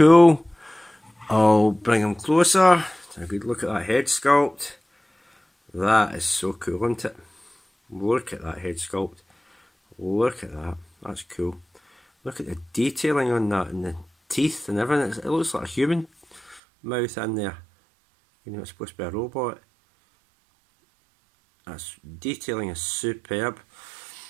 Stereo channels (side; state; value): left; drops out; at 16.6 s